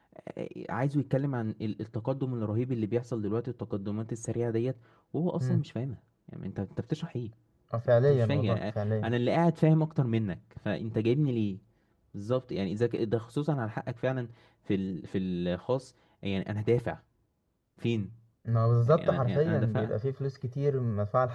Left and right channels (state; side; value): identical; both; correlation 1.00